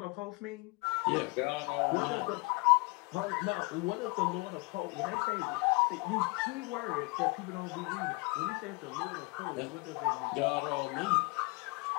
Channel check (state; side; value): quieter; right; 27.0 dB